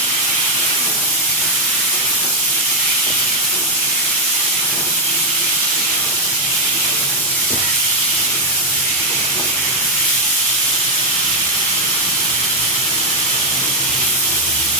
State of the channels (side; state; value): both; normal; correlation 0.02